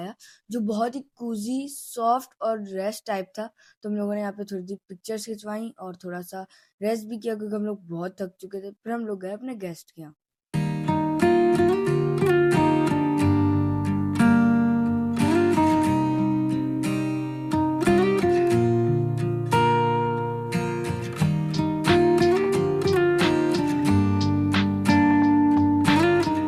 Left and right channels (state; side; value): identical; both; correlation 1.00